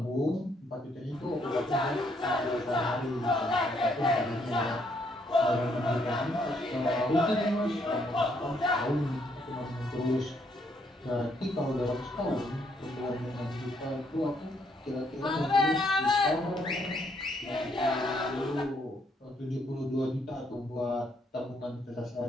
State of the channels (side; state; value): both; normal; correlation 0.71